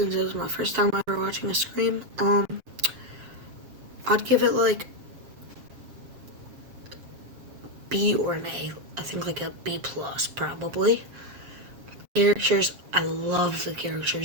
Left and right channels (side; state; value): left; late; 7.4 ms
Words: it was my first time ever watching a Scream, I'd give it like B or an A. I think like a B plus probably. Characters, I love the